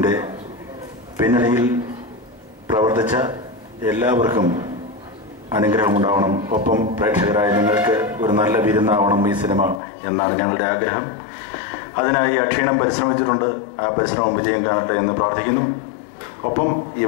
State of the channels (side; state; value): right; drops out; at 9.8 s